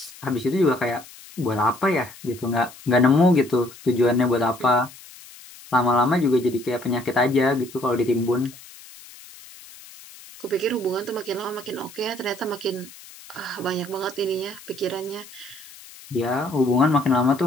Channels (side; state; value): left; noise; hiss, 19 dB below the sound